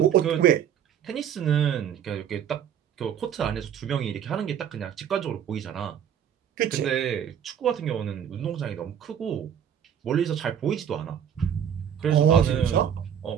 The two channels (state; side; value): quieter; left; 9.0 dB